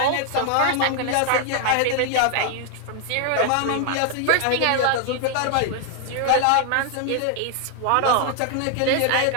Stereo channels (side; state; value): both; different; correlation 0.00